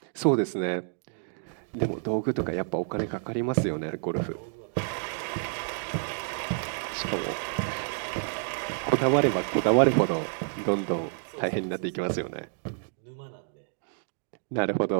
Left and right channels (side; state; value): left; silent; digital silence